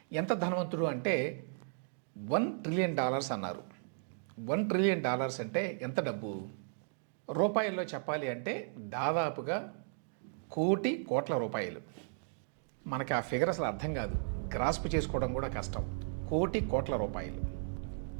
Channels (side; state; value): left; silent; digital silence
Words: ఎంత ధనవంతుడు అంటే $1 ట్రిలియన్ అన్నారు. $1 ట్రిలియన్ అంటే ఎంత డబ్బు? రూపాయల్లో చెప్పాలి అంటే దాదాపుగా కోట్ల రూపాయలు. మనకి ఆ ఫిగర్ అసలు అర్థం కాదు, గ్రాస్ప్ చేసుకోవడం కూడా కష్టం. కోట్ల రూపాయలు.